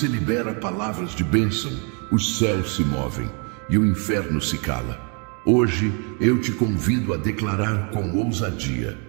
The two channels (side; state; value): left; quieter; 37.1 dB